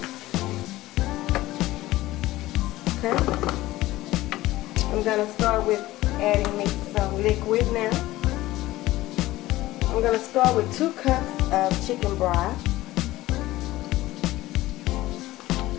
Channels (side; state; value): right; quieter; 17.0 dB